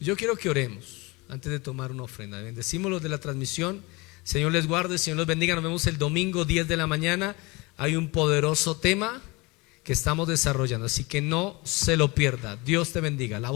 Yo quiero que oremos antes de tomar una ofrenda. Bendecimos los de la transmisión. Señor les guarde, Señor los bendiga. Nos vemos el domingo 10 de la mañana. Hay un poderoso tema que estamos desarrollando, así que no se lo pierda. Dios te bendiga. La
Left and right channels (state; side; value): quieter; right; 25.1 dB